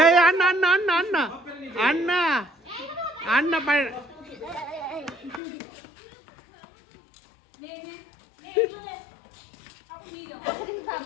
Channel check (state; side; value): drops out; right; at 5.4 s